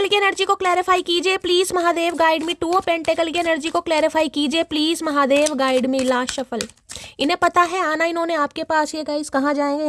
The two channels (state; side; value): identical; both; correlation 1.00